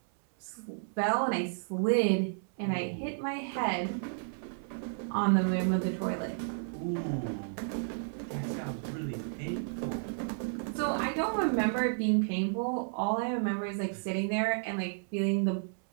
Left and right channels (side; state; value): left; silent; 56 dB below the other